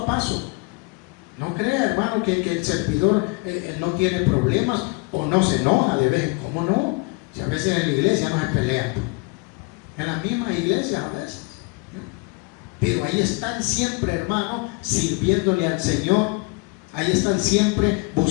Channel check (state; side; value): quieter; right; 26.8 dB